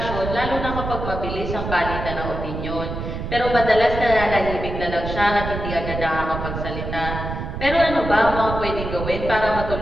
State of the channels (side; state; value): right; noise; rumble, 6 dB below the sound